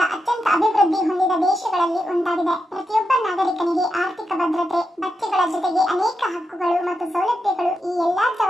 ಅತ್ಯಂತ ಅಭಿವೃದ್ಧಿ ಹೊಂದಿದ ದೇಶಗಳಲ್ಲಿ ಒಂದಾಗಿದೆ. ಪ್ರತಿಯೊಬ್ಬ ನಾಗರಿಕನಿಗೆ ಆರ್ಥಿಕ ಭದ್ರತೆ, ಭತ್ಯೆಗಳ ಜೊತೆಗೆ ಅನೇಕ ಹಕ್ಕುಗಳು ಮತ್ತು ಸೌಲಭ್ಯಗಳು, ಈ ಎಲ್ಲಾ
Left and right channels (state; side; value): normal; both; correlation 0.87